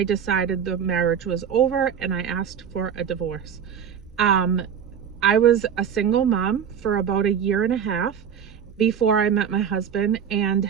decided the marriage was over and I asked for a divorce. I was a single mom for about 1.5 years before I met my husband, and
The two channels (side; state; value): left; quieter; 7.9 dB